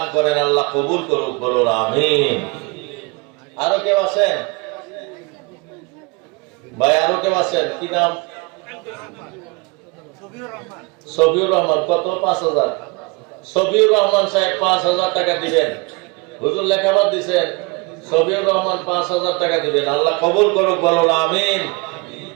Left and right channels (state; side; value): quieter; left; 27.9 dB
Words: করেন, আল্লাহ কবুল করুক, বলুন আমিন। আরো কেউ আছেন ভাই? আরো কেউ আছেন? কি নাম? সফিউর রহমান। কত? 5000। সফিউর রহমান সাহেব 5000 টাকা দিবেন। হুজুর লেখাবাদ দিছেন, সফিউর রহমান 5000 টাকা দিবেন, আল্লাহ কবুল করুক, বলুন আমিন।